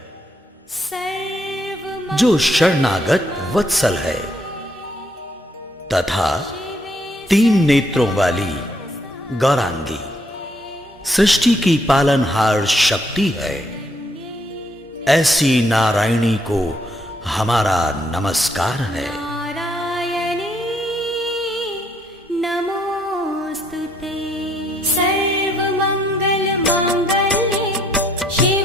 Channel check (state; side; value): normal; both; correlation 0.71